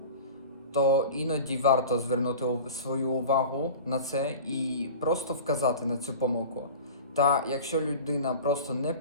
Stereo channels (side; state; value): both; inverted; correlation -0.37